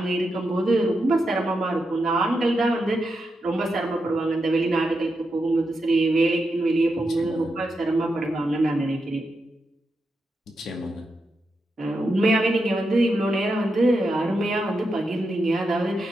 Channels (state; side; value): normal; both; correlation 0.86